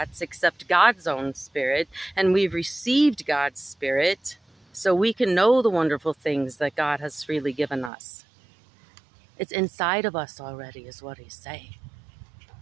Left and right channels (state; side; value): drops out; left; at 7.9 s